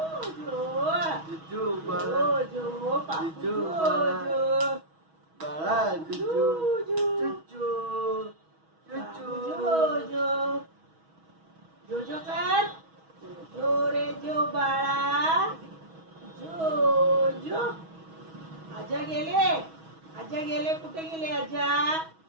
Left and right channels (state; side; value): late; left; 6.2 ms